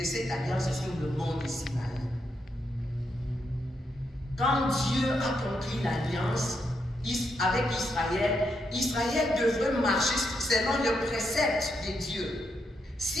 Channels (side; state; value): both; normal; correlation 0.81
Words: cette alliance sur le mont de Sinaï. Quand Dieu a conclu l'alliance avec Israël, Israël devrait marcher selon le précepte de Dieu.